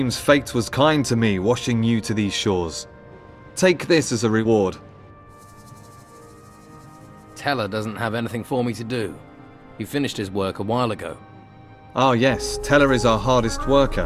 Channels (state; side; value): identical; both; correlation 1.00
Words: fate was kind to me, washing you to these shores. Take this as a reward. Teller doesn't have anything for me to do. He finished his work a while ago. Ah yes, Teller is our hardest